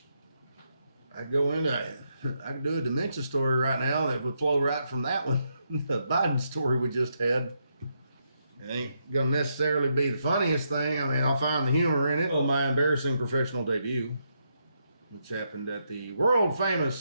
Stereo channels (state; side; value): inverted; both; correlation -0.79